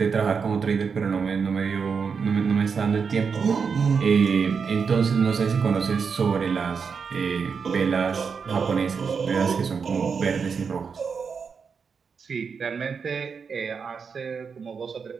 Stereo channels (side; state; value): left; quieter; 5.8 dB